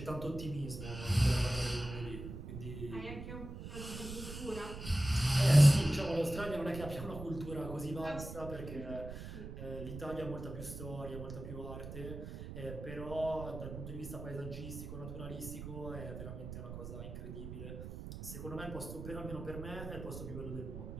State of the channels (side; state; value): right; noise; rumble, 9 dB below the sound